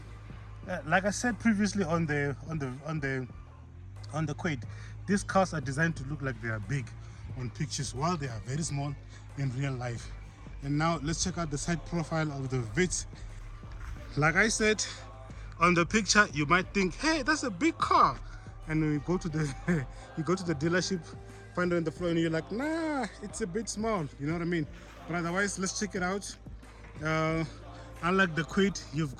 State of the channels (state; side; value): identical; both; correlation 1.00